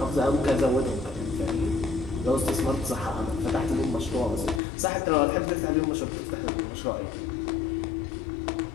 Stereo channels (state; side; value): drops out; right; at 4.6 s